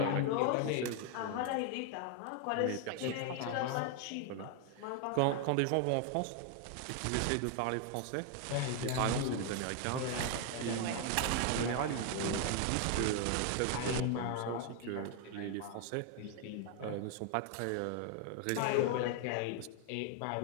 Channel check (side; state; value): both; different; correlation 0.01